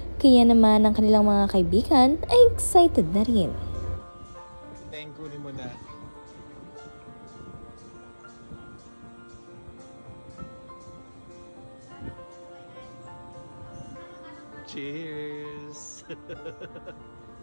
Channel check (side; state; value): both; inverted; correlation -1.00